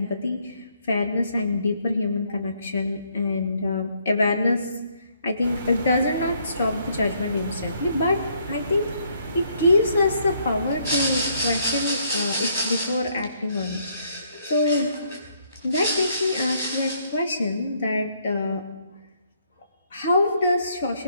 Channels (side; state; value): both; inverted; correlation -0.70